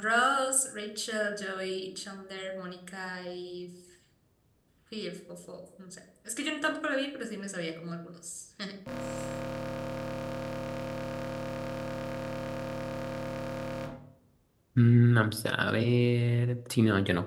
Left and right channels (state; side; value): identical; both; correlation 1.00